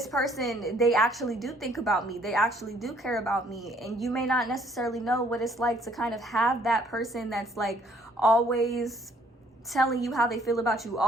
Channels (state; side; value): normal; both; correlation 0.63